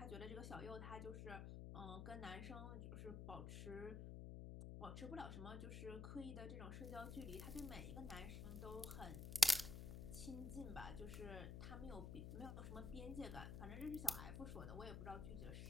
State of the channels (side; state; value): left; noise; hum, 5 dB below the sound